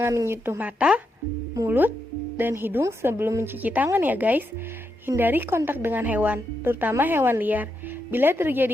menyentuh mata, mulut, dan hidung sebelum mencuci tangan ya guys. Hindari kontak dengan hewan, terutama hewan liar. Bila terjadi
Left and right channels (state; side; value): normal; both; correlation 0.83